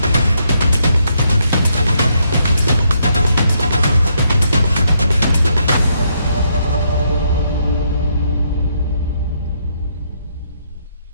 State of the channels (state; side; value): inverted; both; correlation -0.75